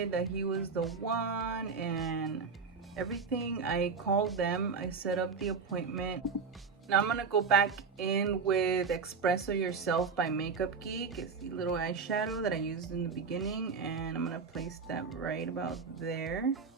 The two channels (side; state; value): left; quieter; 5.2 dB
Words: that he was the one and everything, I called them, I set up the appointment. Now I'm gonna go back in with Espresso Yourself by Makeup Geek. It's the little eyeshadow that I used in the beginning, and I'm gonna place that right about there